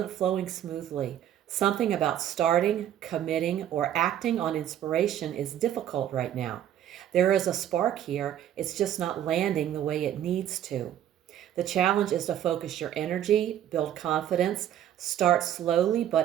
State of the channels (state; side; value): quieter; left; 10.9 dB